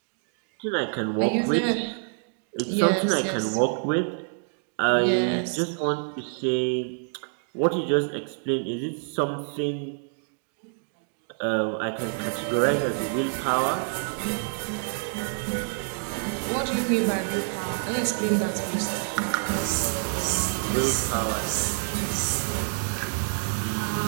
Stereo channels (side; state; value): left; silent; 60 dB below the other